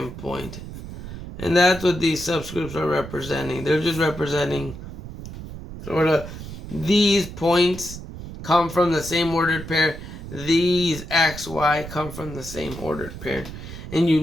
point. And that's what these subscripts are representing. They're just representing sort of these points come from the same ordered pair. These x, y come from the same ordered pair. And you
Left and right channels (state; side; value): noise; right; rumble, 11 dB below the sound